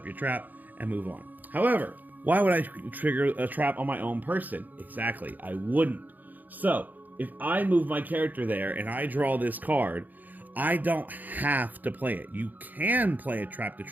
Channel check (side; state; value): left; late; 0.083 ms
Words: your trap and move on. However, why would I trigger a trap on my own person? Exactly, I wouldn't. So if I move my character there and I draw this card, I don't have to play it. You can play a trap to